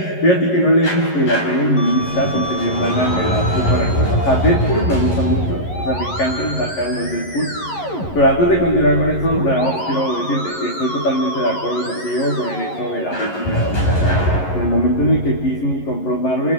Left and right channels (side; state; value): right; late; 11 ms